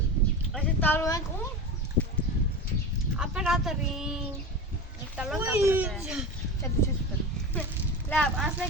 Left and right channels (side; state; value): both; normal; correlation 0.27